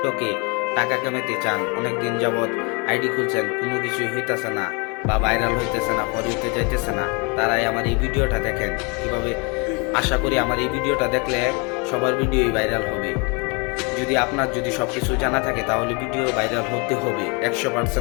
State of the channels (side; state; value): right; quieter; 31.6 dB